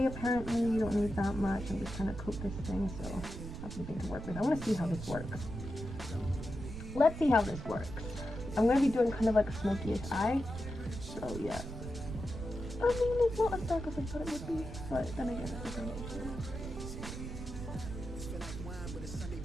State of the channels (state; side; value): noise; right; rumble, 8 dB below the sound